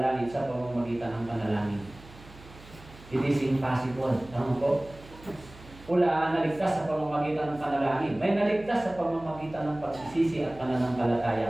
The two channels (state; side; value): noise; right; hum, 20 dB below the sound